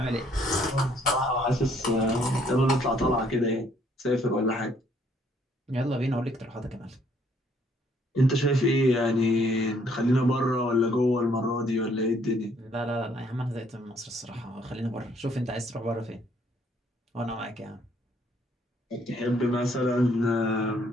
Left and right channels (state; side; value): normal; both; correlation 0.65